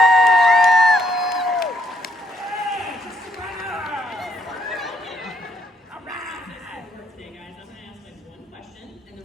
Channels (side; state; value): both; normal; correlation 0.72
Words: Today, guys, I'm going to ask like one question, and then